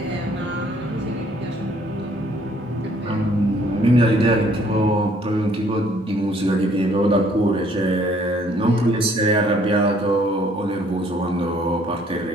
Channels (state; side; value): normal; both; correlation 0.62